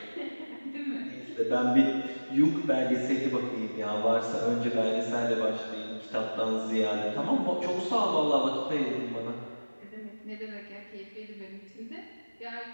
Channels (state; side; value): inverted; both; correlation -1.00